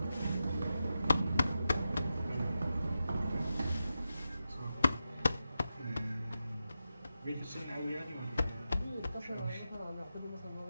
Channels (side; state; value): both; inverted; correlation -0.90